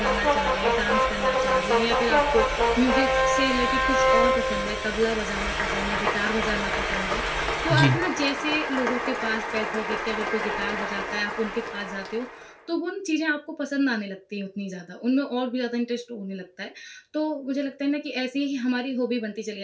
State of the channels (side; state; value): both; identical; correlation 1.00